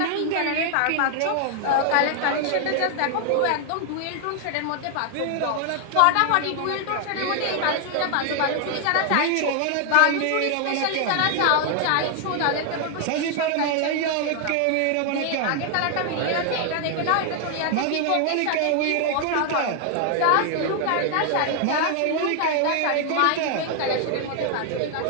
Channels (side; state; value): both; different; correlation 0.00